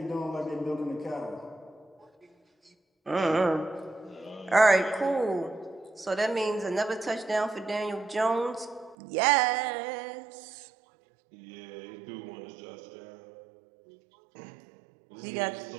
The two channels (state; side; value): drops out; left; at 9.0 s